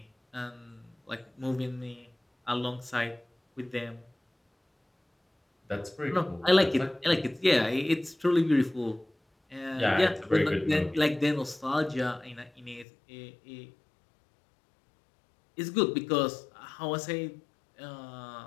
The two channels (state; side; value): drops out; right; at 12.9 s